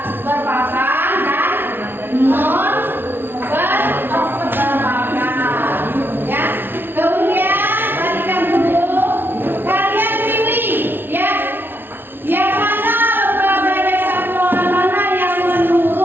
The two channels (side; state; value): left; late; 0.10 ms